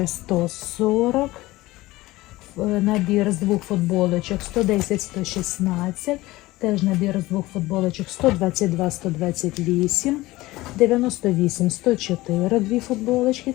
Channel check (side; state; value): right; quieter; 18.9 dB